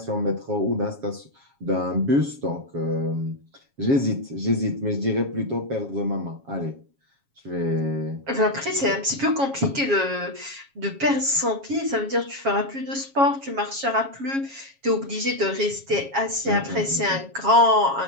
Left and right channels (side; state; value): left; late; 7.3 ms